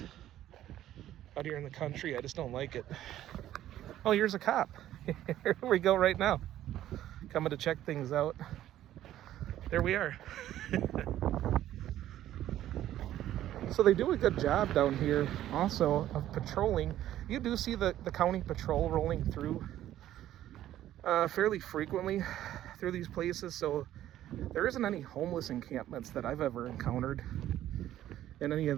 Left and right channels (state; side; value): quieter; left; 12.8 dB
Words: out here in the country, I just don't like it. Oh, here's a cop. Here we go right now. Coming to check things out. There we are. So they do a good job down here also of patrolling. You do see the county patrol rolling through fairly frequently through these places. So there isn't any homeless encampments that I've ever encountered in any of